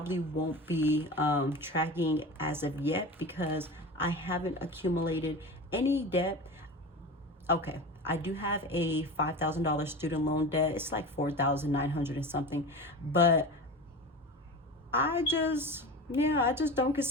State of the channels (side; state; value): both; normal; correlation 0.30